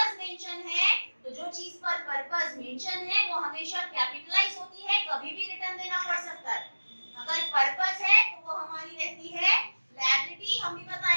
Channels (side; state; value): both; inverted; correlation -1.00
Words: मेंशन है तो जो चीज पर पर्पस मेंशन है वो हमेशा कैपिटलाइज होती है, कभी भी रिटर्न देना पड़ सकता है। अगर पर्पस है तो वो हमारी रहती है लायबिलिटी। हम भी